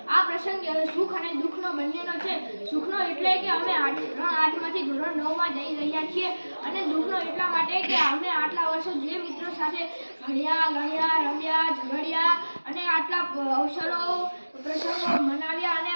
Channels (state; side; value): inverted; both; correlation -1.00